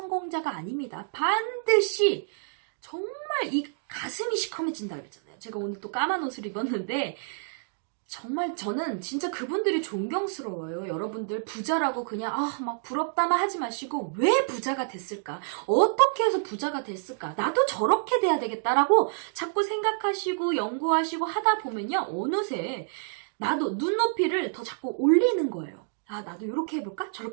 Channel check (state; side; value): silent; left; digital silence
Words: 아닙니다. 반드시 정말 이 가슴이 시커매진다 그랬잖아요. 제가 오늘 또 까만 옷을 입었는데 정말 저는 진짜 그분들이 존경스러워요. 여러분들 부자라고 그냥 막 부럽다만 하지 마시고 왜 부자가 됐을까? 어떻게 해서 부자가 됐을까? 나도 저렇게 돼야 되겠다라고 자꾸 생각하시고 연구하시고 하다 보면요. 어느새 나도 눈높이를 더 자꾸 올리는 거예요. 나도 이렇게 해볼까?